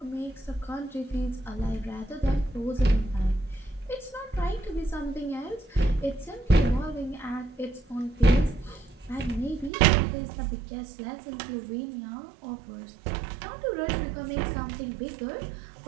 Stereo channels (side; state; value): left; drops out; at 9.7 s